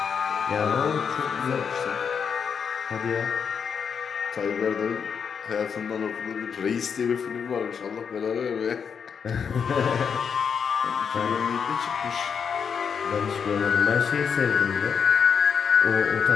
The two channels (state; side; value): quieter; right; 6.7 dB